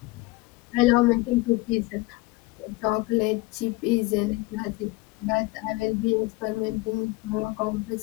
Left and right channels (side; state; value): right; quieter; 22.0 dB